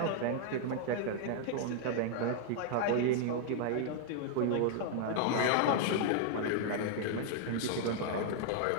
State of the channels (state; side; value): different; both; correlation 0.00